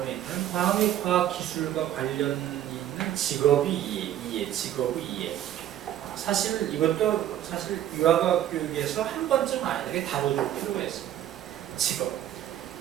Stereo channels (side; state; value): left; quieter; 11.8 dB